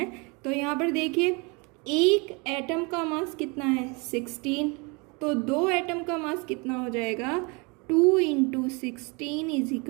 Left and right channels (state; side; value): quieter; left; 29.8 dB